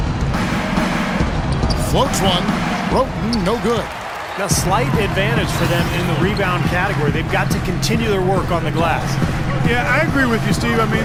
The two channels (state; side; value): identical; both; correlation 1.00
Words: Floats one. Roten, no good. A slight advantage for them in the rebound category. They've got to continue their work on the glass. Yeah, I agree with you, Steve. I